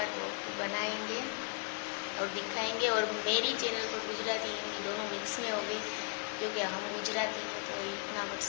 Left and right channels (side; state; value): right; quieter; 37.1 dB